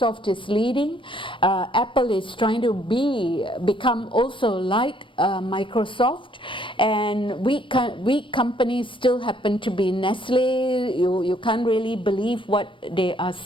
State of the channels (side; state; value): right; late; 0.25 ms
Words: is leading, Apple is trying to become also like Microsoft, and weak companies still happen to be Nestle. You can't really believe what they are